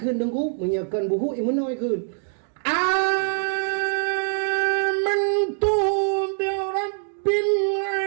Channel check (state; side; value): silent; left; digital silence